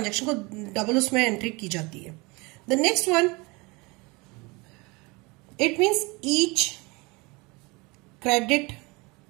को डबल उसमें एंट्री की जाती है. The next one, it means each credit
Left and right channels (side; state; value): left; quieter; 26.0 dB